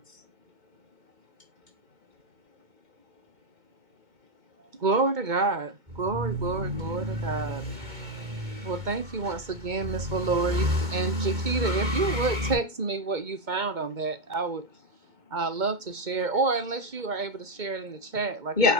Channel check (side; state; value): left; late; 2.2 ms